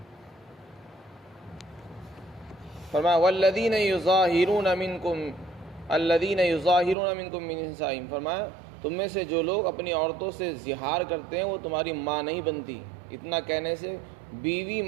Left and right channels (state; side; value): drops out; left; at 7.0 s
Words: فرمایا والذین یظاہرون منکم من نسائہم، فرمایا تم میں سے جو لوگ اپنی عورتوں سے زہار کرتے ہیں وہ تمہاری ماں نہیں بنتی۔ اتنا کہنے سے بیوی